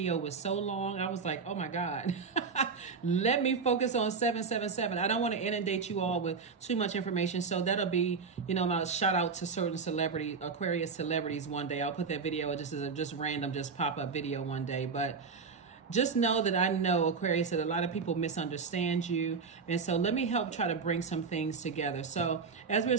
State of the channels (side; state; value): left; quieter; 5.2 dB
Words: was so long, I was like, oh my God. Let me focus on 777. I don't want to inundate you all with too much information. So that'll be, my shout out to certain celebrity, Aquarius celebrities one day. I'll put that video just as a random, pop-up video one day. But just know that I know, Aquarius, that a lot of people misunderstand you. And so let me help try to bring some things together. So as we're